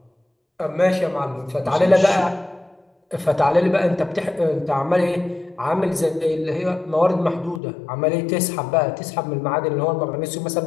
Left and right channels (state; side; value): drops out; right; at 7.6 s